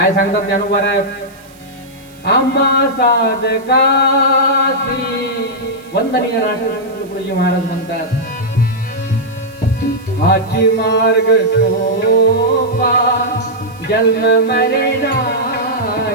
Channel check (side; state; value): right; noise; hiss, 27 dB below the sound